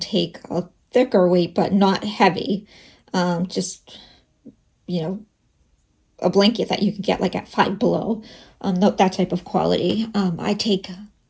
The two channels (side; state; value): both; identical; correlation 1.00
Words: take a thicker weight, but not heavy. Just, you know, a blanket that you can get like at Five Below, that type of quality. I take